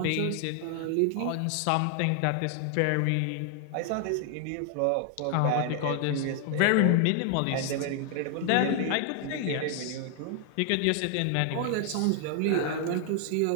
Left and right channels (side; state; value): both; different; correlation 0.00